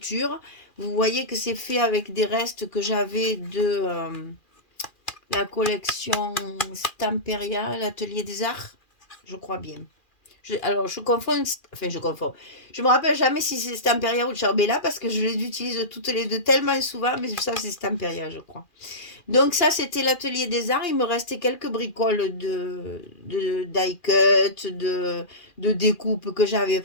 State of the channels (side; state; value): right; late; 2.4 ms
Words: Vous voyez que c'est fait avec des restes que j'avais de la collection Stamperia, l'atelier des arts, je crois bien. Je confonds, enfin je confonds. Je me rappelle jamais si c'est Stamperia ou Charbella parce que je les utilise toutes les deux tellement souvent, mais ça c'est Stamperia je crois. Donc ça, c'était l'atelier des arts. Il me restait quelques bricoles de die-cut, de découpe que j'avais